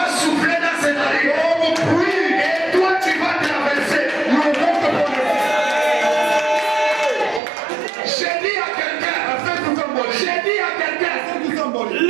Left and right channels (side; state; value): left; drops out; at 7.4 s